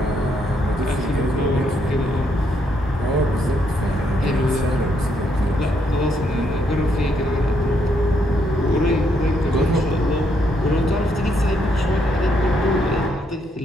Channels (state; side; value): normal; both; correlation 0.75